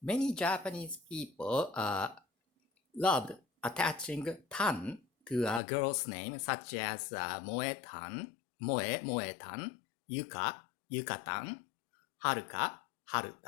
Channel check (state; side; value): drops out; right; at 5.6 s